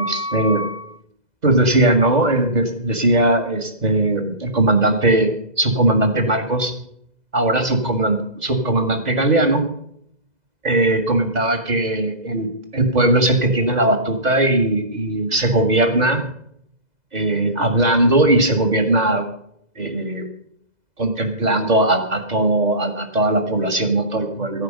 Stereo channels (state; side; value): late; left; 2.0 ms